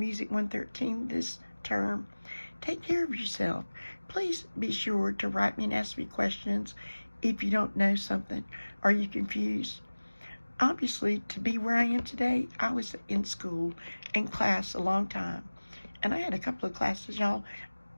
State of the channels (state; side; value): inverted; both; correlation -1.00